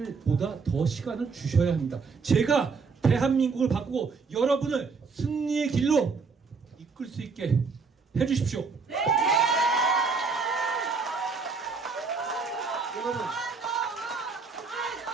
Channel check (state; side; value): quieter; left; 4.8 dB